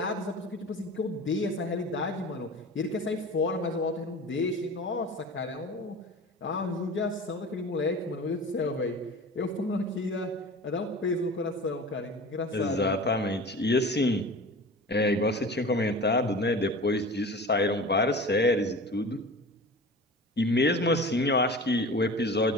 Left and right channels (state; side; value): normal; both; correlation 0.36